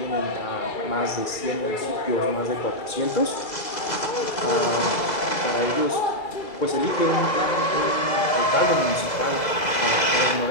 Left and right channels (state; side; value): late; right; 2.0 ms